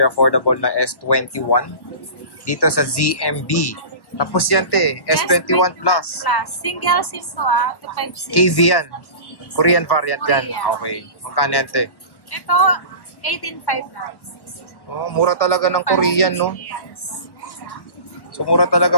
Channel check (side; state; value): right; late; 1.1 ms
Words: affordable na S21 dito sa ZMB. Tapos yan, te, S21 Plus. Single SIM to, 256. KV yan. Korean variant yan. Korean. Okay. Magkano yan, te? Ito, 18.5 lang. Oh, mura talaga ng Korean, no? Yes. So, mura talaga